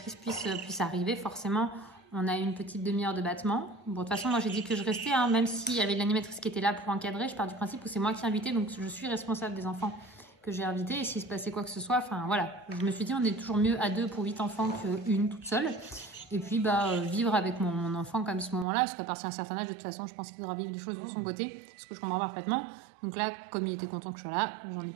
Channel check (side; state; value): left; drops out; at 18.7 s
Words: puisse arriver, forcément, on a eu une petite demi-heure de battement. Bon, de toute façon, moi, j'ai dit que je restais, hein, même s'il y avait l'animatrice qui était là pour encadrer. Je pars du principe où c'est moi qui ai invité, donc je suis responsable des enfants que j'ai invités. Et s'il se passait quoi que ce soit, enfin, voilà. Je me suis dit, on est toujours mieux à 2 pour 8 enfants qu'une toute seule. Et puis, vivre avec mon enfant comme ce moment-là, parce qu'à partir d'un certain âge, de toute façon, je pense qu'il devra vivre des choses de son côté, ce que je comprends parfaitement. Donc là, comme il était content que je sois là, j'en ai